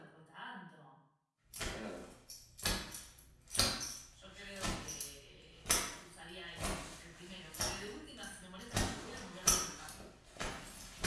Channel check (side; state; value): both; identical; correlation 1.00